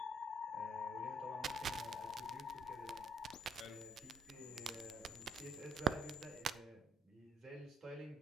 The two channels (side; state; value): both; normal; correlation 0.66